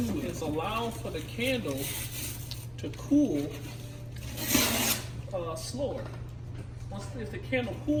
is allow for the candle to cool slower. If the candle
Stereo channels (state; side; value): identical; both; correlation 1.00